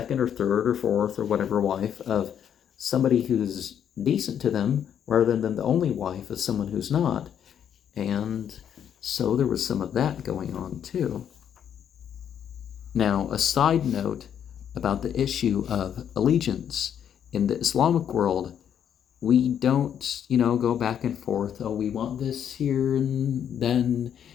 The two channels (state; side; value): quieter; right; 9.0 dB